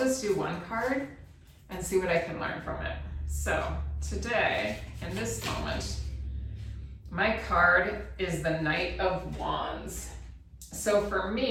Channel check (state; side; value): identical; both; correlation 1.00